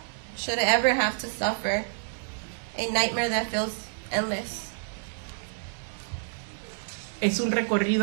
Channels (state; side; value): silent; left; 59 dB below the other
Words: should ever have to suffer, a nightmare that feels endless. Es un